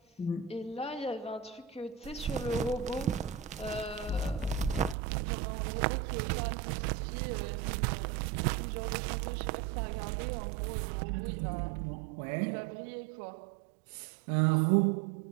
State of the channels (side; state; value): left; drops out; at 5.0 s